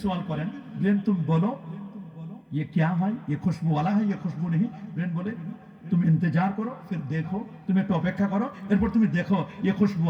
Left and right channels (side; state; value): both; identical; correlation 1.00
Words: সওয়াল করেন ব্রেন তুমি বলো ये क्या है ये खुशबू वाला है ये खुशबू नहीं ब्रेन बोले तुम इंतजार करो फिर देखो तुम एक अपेक्षा करो एरपर तुम देखो ये खुशबू